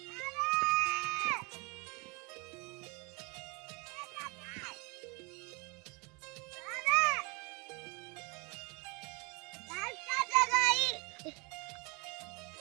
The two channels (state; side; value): quieter; left; 29.6 dB